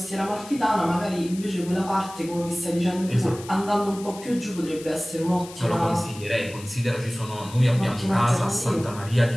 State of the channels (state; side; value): noise; left; hiss, 17 dB below the sound